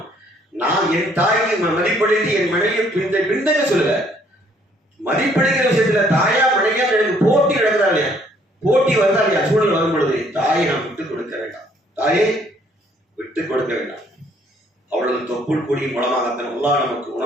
நான் என் தாய்க்கு மதிப்படைத்து என் மனைவியை பின்தங்க சொல்லுங்க. மதிப்படைக்கிற விஷயத்துல தாயா மனைவியா எனக்கு போட்டி நடக்குதா இல்லையா? போட்டி வருதா இல்லையா? சூழல் வரும் பொழுது தாயை நாம் விட்டுக் கொடுக்க வேண்டாம், தாயை விட்டுக் கொடுக்க வேண்டாம். அவளது தொப்புள் கொடியின் மூலமாகத்தான் அல்லாஹ் நமக்கு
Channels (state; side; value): normal; both; correlation 0.64